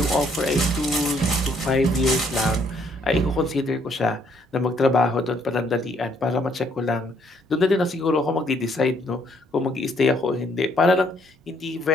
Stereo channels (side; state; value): both; normal; correlation 0.67